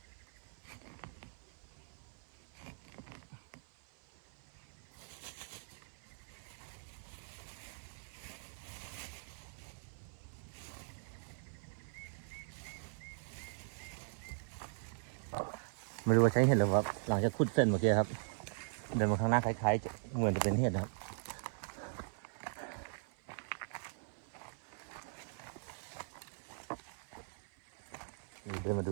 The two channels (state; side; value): silent; left; 51 dB below the other